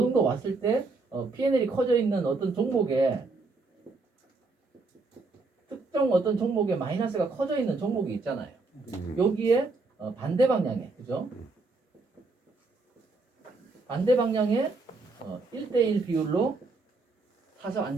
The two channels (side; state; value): left; quieter; 3.7 dB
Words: 왔을 때 P&L이 커져 있는 어떤 종목에 특정 어떤 종목에 마이너스가 커져 있는 종목이 있잖아요. 여기에 반대 방향에 그죠? 반대 방향에 1대1 비율로 사서